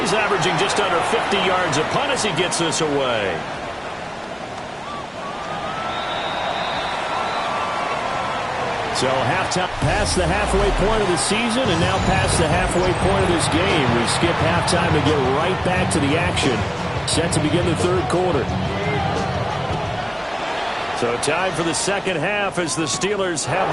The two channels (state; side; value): identical; both; correlation 1.00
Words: averaging just under 50 yards a punt as he gets this away. So halftime, past the halfway point of the season, and now past the halfway point of this game. We skip halftime to get right back to the action. Set to begin the third quarter. So time for the second half as the Steelers have